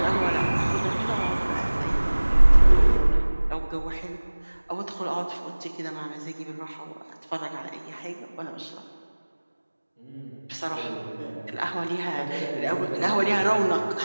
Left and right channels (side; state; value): both; inverted; correlation -1.00